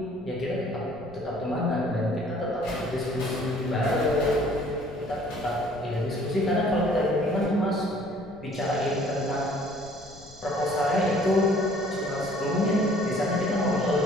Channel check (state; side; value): noise; left; rumble, 24 dB below the sound